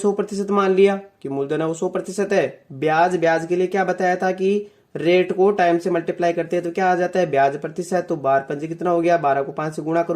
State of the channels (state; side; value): identical; both; correlation 1.00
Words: मान लिया कि मूलधन है वो 100% है। ब्याज के लिए क्या बताया था कि रेट को टाइम से मल्टीप्लाई करते हैं तो क्या आ जाता है ब्याज प्रतिशत। तो 12 पंजे कितना हो गया, 12 को 5 से गुणा